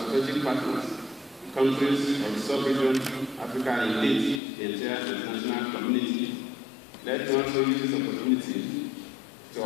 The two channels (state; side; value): drops out; right; at 4.4 s